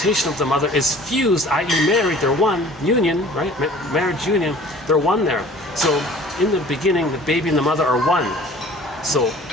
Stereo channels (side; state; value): both; normal; correlation 0.48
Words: of the mother is fused, i.e. married, they're one, union, right? Marriage union, they're one there. So in the beginning, the baby and the mother are one. So